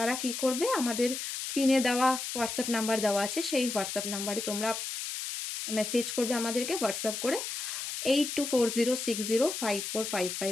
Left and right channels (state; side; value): noise; left; hiss, 5 dB below the sound